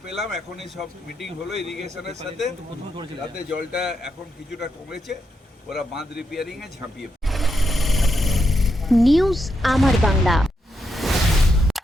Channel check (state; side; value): normal; both; correlation 0.82